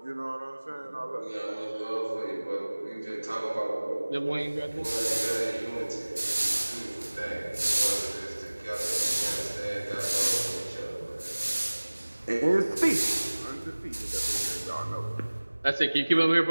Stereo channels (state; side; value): inverted; both; correlation -1.00